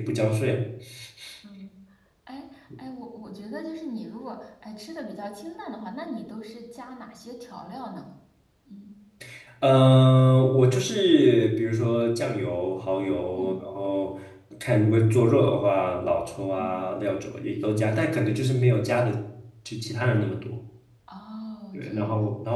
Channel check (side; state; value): both; identical; correlation 1.00